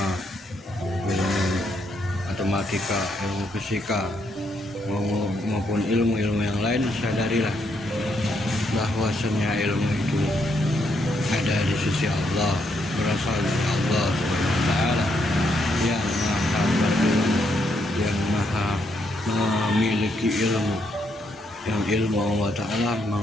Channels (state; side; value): normal; both; correlation 0.76